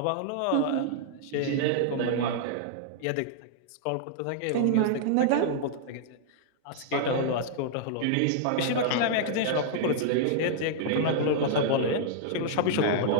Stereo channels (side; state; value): both; different; correlation -0.01